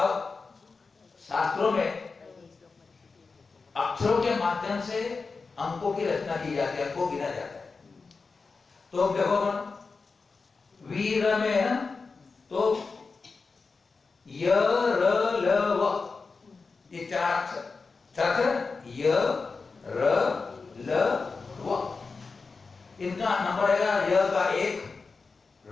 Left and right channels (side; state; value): right; quieter; 4.4 dB